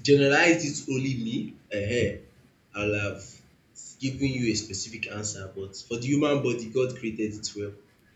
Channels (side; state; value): both; identical; correlation 1.00